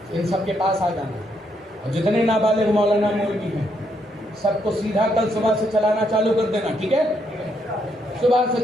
ان سب کے پاس آ جانا۔ اور جتنے نابالغ مولانا مولوی ہیں سب کو سیدھا کل صبح سے چلانا چالو کر دینا، ٹھیک ہے؟ صبح سے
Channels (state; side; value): normal; both; correlation 0.75